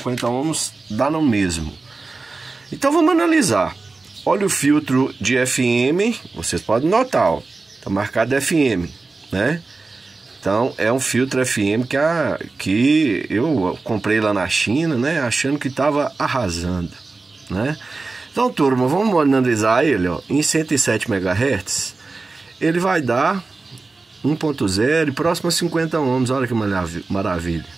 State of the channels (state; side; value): quieter; left; 3.8 dB